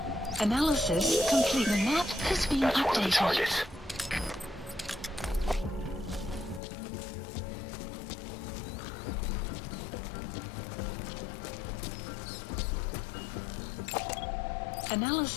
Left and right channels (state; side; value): drops out; right; at 6.6 s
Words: Analysis complete. The map has been That's one of the updated. targets.